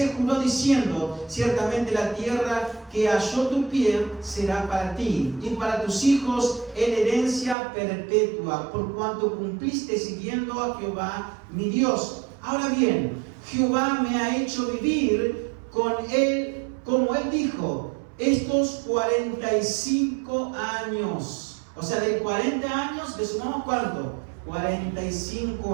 juró diciendo: ciertamente la tierra que halló tu pie será para ti y para tus hijos en herencia perpetua, por cuanto cumpliste siguiendo a Jehová mi Dios. Ahora bien, Jehová me ha hecho vivir con él, como él dijo, estos 45 años. O sea, de 40 años le sumamos ¿cuánto?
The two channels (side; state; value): left; drops out; at 7.6 s